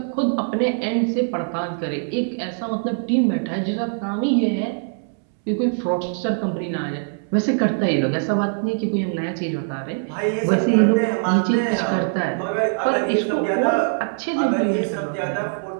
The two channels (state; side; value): silent; left; 64 dB below the other